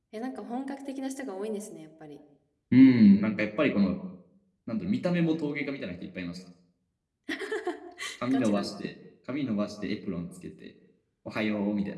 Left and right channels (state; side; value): identical; both; correlation 1.00